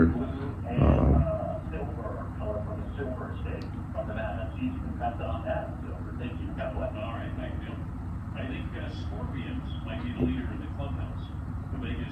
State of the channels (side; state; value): both; identical; correlation 1.00